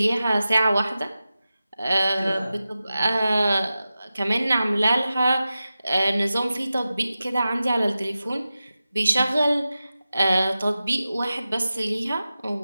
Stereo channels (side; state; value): both; inverted; correlation -0.94